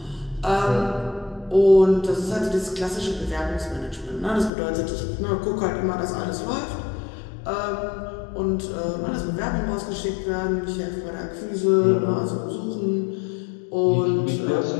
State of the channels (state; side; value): drops out; right; at 4.5 s